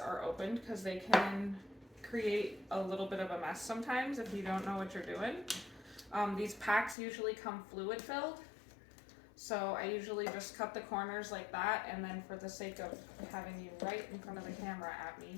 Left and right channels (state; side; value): drops out; right; at 7.0 s